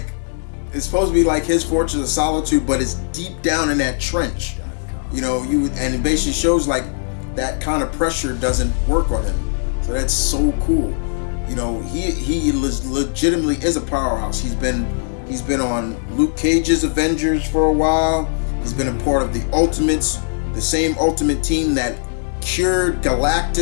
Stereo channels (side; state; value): right; silent; 66 dB below the other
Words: it's supposed to be like his Fortress of Solitude, but it's deep down in that trench. And it basically shows like that kind of pressure doesn't work on him. So that's so cool. He legitimately is a powerhouse. He's been on Luke Cage's Avengers for a while. He's been a part of the Ultimates, the same Ultimate team that cured